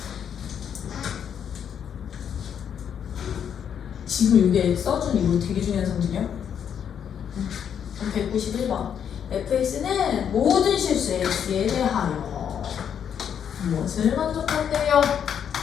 지금 이게 써준 이거 되게 중요한 성질이야. 191번 fx는 모든 실수 x에 대하여 무엇을 만족한대요?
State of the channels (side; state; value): right; quieter; 8.3 dB